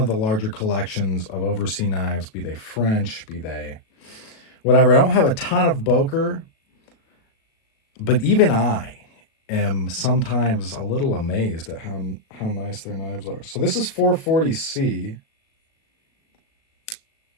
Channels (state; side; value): late; right; 37 ms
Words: the larger collections of overseas knives, be they French, be they whatever. I don't have a ton of Boker, but even I am sometimes a little amazed at how nice their knives are. So this is 440C.